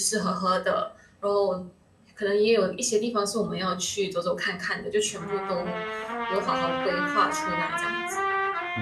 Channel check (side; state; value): both; identical; correlation 1.00